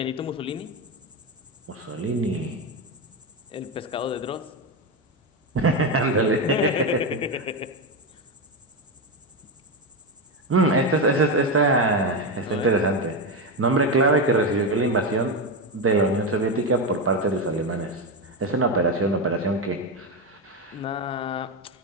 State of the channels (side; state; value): both; normal; correlation 0.12